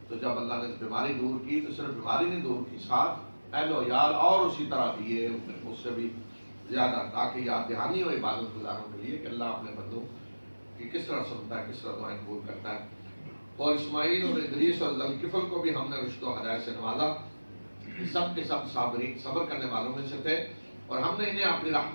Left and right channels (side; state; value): both; inverted; correlation -1.00